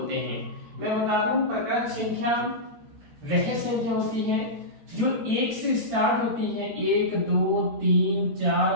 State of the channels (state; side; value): late; left; 13 ms